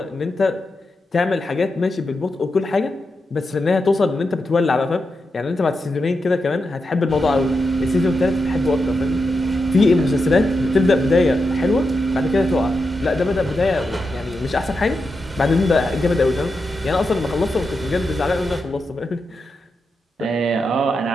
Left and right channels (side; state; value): both; normal; correlation 0.87